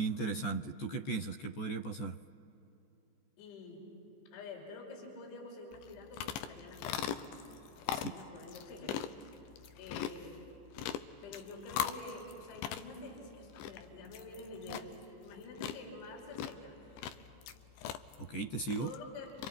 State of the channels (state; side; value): late; right; 15 ms